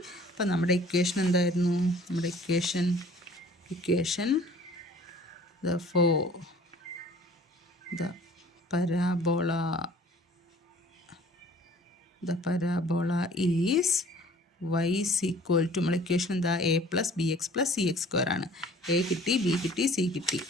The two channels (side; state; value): both; normal; correlation 0.51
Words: അപ്പോൾ നമ്മുടെ ഇക്വേഷൻ എന്തായിരുന്നു, നമ്മുടെ equation the parabola is y equal to നമ്മൾ ഇക്വേഷൻ എന്താ, a + bx + cx² ആണ്. a കിട്ടി, b കിട്ടി, c കിട്ടി.